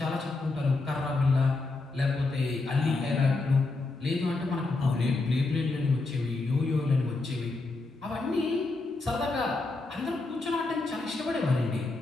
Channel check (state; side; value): quieter; right; 3.4 dB